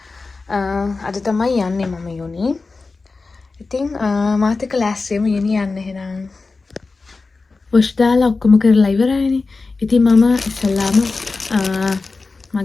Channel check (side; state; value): right; quieter; 3.9 dB